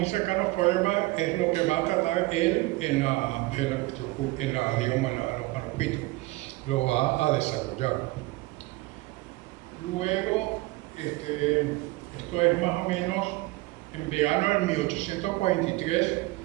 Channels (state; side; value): quieter; left; 20.8 dB